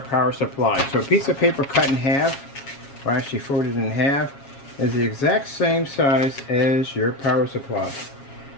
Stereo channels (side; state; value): right; late; 7.3 ms